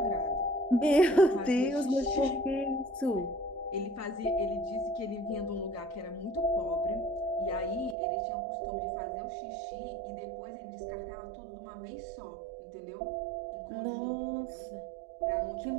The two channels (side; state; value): left; drops out; at 8.0 s